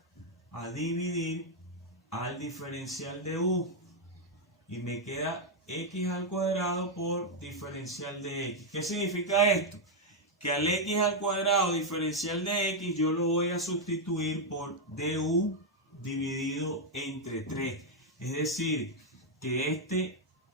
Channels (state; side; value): normal; both; correlation -0.01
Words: a dividir al diferencial de u y me queda x al cuadrado por diferencial de x. ¿Qué significa esto? Que al x al cuadrado diferencial de x yo lo voy a sustituir por du dividido entre 3. Es decir, que este